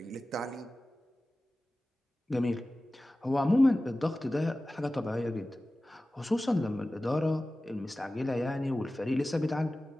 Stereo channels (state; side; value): normal; both; correlation 0.96